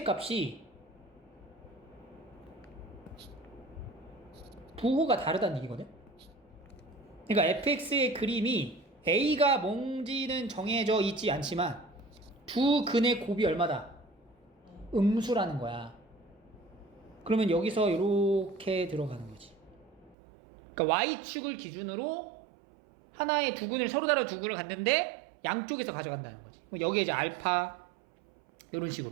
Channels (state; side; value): drops out; left; at 20.2 s